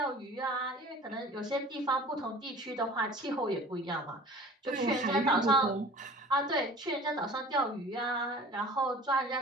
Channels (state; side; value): normal; both; correlation 0.44